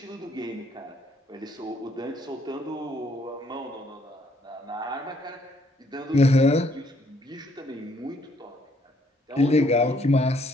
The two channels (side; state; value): both; normal; correlation 0.67